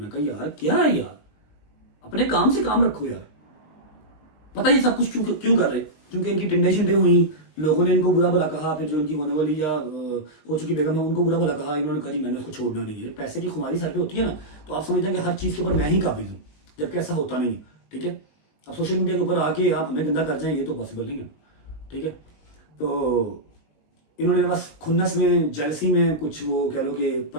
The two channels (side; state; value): right; late; 20 ms